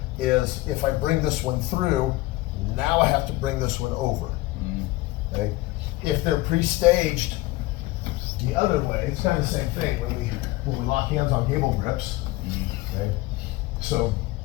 is if I bring this one through, now I have to bring this one over. Okay? If they're pre-staged the other way, it's kind of the same thing when we lock hands on gable grips. Okay? So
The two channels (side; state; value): right; quieter; 19.0 dB